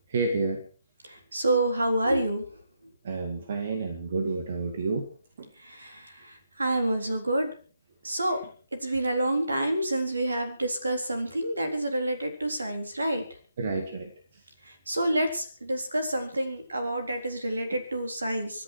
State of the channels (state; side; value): inverted; both; correlation -0.82